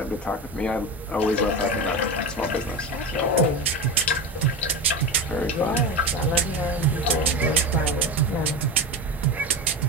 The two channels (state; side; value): normal; both; correlation 0.24